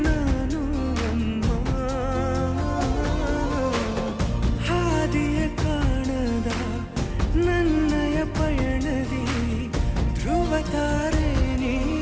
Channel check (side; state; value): both; identical; correlation 1.00